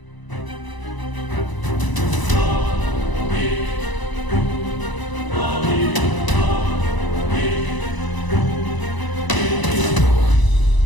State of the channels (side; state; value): right; late; 1.0 ms